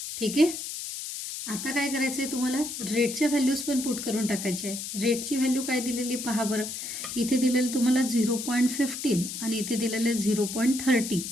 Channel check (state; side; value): noise; left; hiss, 7 dB below the sound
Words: ठीक आहे. आता काय करायचं आहे तुम्हाला? रेटच्या व्हॅल्यूज पण पुट करून टाकायचे आहे. रेटची व्हॅल्यू काय दिलेली पहा बरं. इथे दिलेलं तुम्हाला 0.15 आणि इथे दिलेलं 0.30,